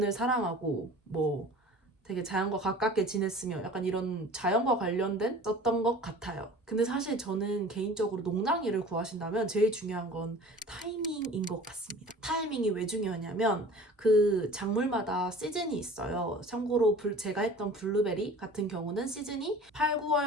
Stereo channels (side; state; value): both; normal; correlation 0.43